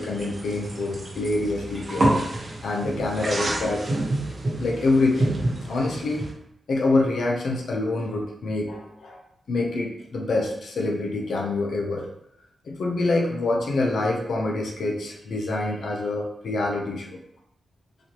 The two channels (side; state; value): both; normal; correlation 0.86